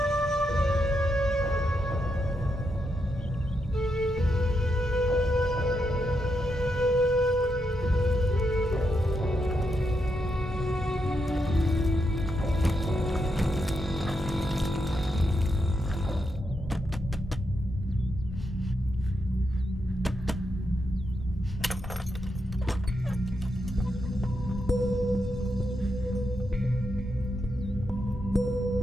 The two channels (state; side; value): normal; both; correlation 0.83